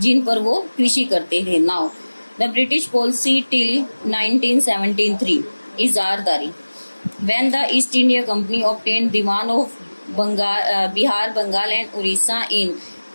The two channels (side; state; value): both; inverted; correlation -1.00